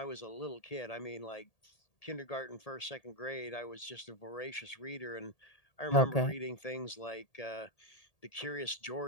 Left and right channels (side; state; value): right; late; 1.8 ms